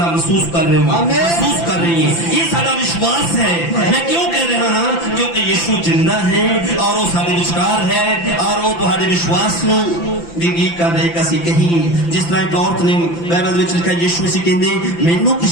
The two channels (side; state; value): right; late; 5.9 ms